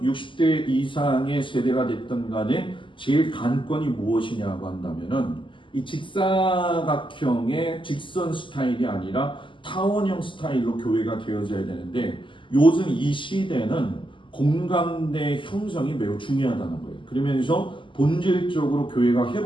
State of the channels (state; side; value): late; right; 0.25 ms